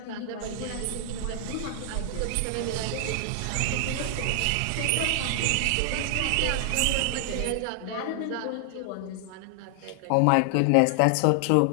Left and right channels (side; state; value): both; different; correlation 0.00